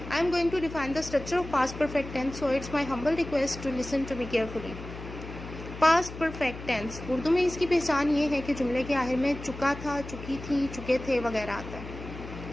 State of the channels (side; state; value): left; noise; hum, 11 dB below the sound